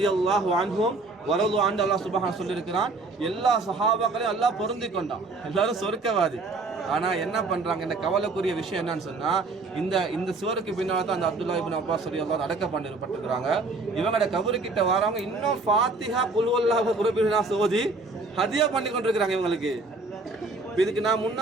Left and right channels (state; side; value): quieter; left; 3.5 dB